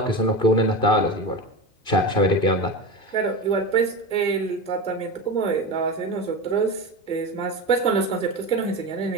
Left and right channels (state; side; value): late; right; 2.5 ms